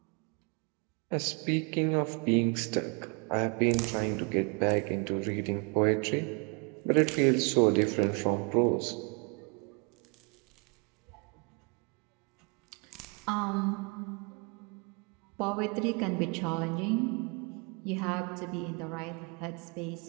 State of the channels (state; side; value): quieter; left; 33.8 dB